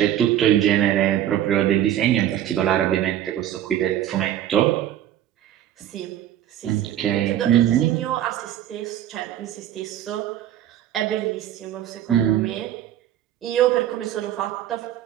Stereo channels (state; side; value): quieter; left; 11.6 dB